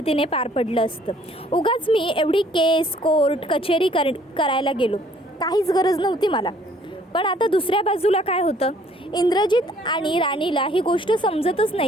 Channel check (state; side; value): normal; both; correlation 0.60